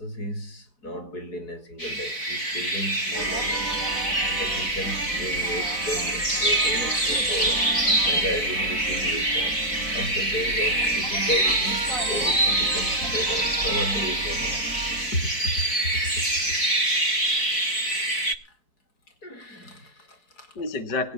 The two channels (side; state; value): right; late; 4.6 ms